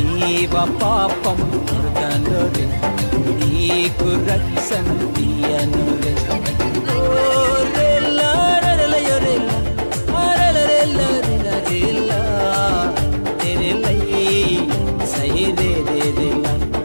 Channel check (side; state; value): both; inverted; correlation -1.00